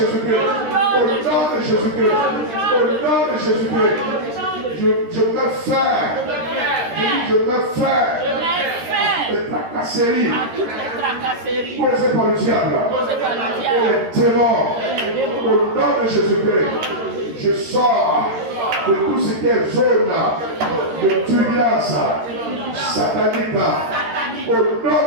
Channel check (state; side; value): late; left; 13 ms